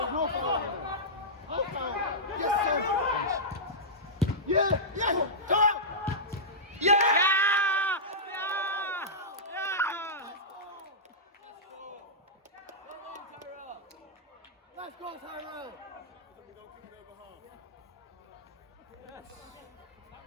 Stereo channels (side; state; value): both; normal; correlation -0.14